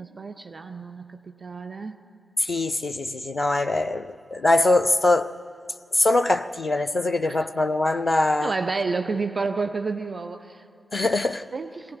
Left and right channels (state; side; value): normal; both; correlation 0.91